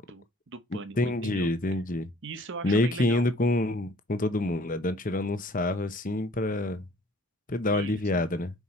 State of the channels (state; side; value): normal; both; correlation 0.54